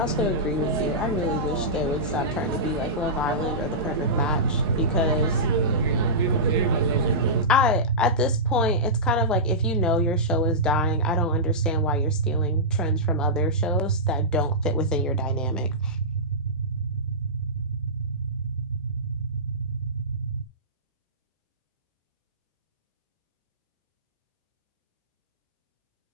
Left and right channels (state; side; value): normal; both; correlation -0.16